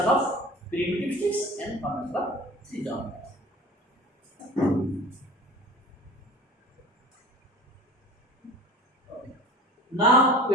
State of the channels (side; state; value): both; normal; correlation 0.41